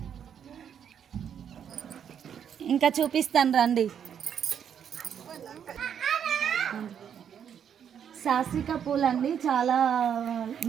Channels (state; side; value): quieter; left; 8.4 dB